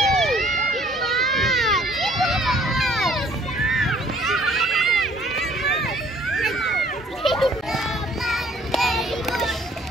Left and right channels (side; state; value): both; normal; correlation 0.58